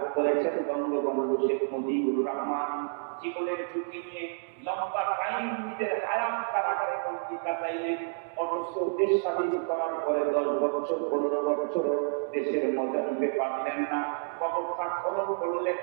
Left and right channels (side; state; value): left; silent; digital silence